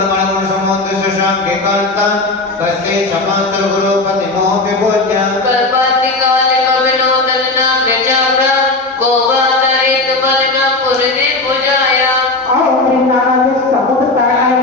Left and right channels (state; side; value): quieter; right; 3.1 dB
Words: समुद्र शशांक कांता कस्ते क्षमांत गुरुपति मोह विभोज्य कल्पांति काले कविनोदन नाम जबरा गोवातरित बलिमा पुरदि पूजाया और नाना समुद्र ताय